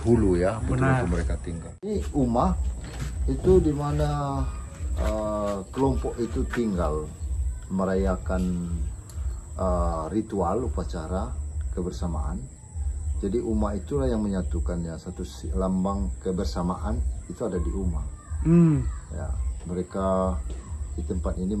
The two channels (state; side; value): identical; both; correlation 1.00